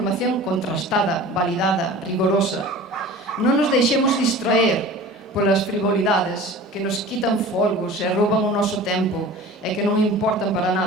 contrastada, validada, rigorosa. Non nos deixemos distraer polas frivolidades que nos quitan folgos e rouban o noso tempo e que non importan para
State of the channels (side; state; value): both; normal; correlation 0.40